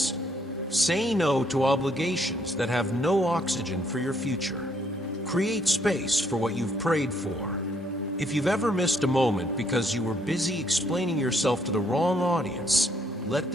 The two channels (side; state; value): both; normal; correlation 0.69